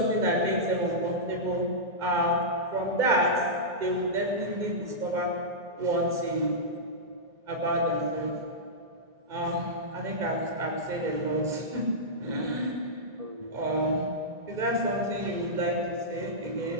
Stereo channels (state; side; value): late; left; 2.2 ms